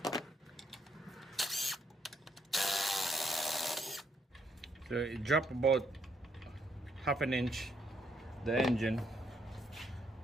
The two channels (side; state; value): both; normal; correlation 0.73